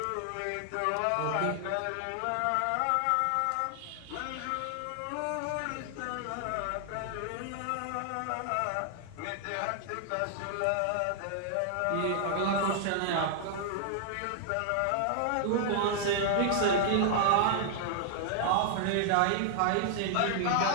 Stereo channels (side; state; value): both; different; correlation -0.01